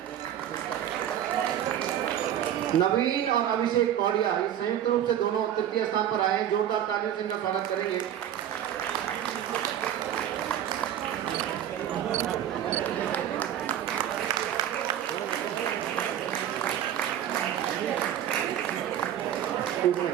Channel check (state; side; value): quieter; left; 10.6 dB